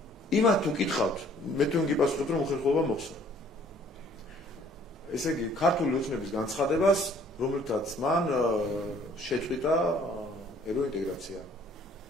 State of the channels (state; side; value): normal; both; correlation 0.58